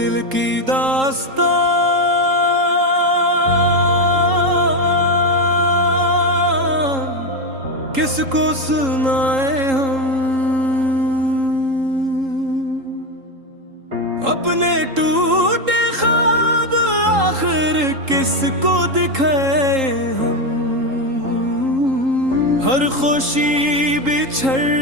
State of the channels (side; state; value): left; late; 3.8 ms